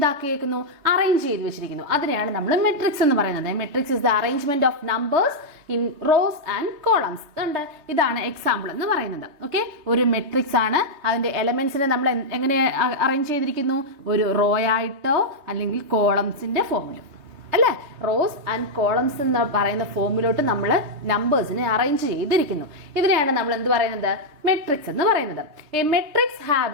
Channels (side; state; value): left; late; 3.3 ms